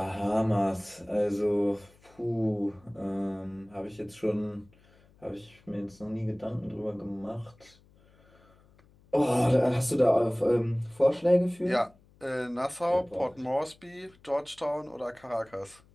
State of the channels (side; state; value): left; noise; hum, 29 dB below the sound